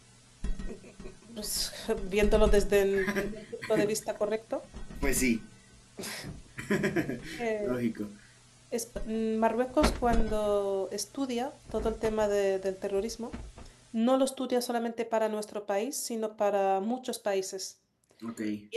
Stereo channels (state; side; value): identical; both; correlation 1.00